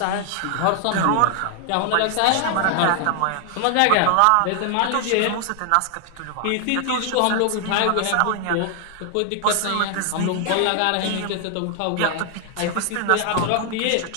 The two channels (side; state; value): both; different; correlation 0.00